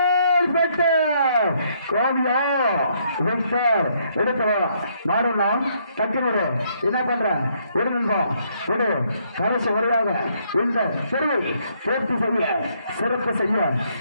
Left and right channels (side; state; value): both; inverted; correlation -0.70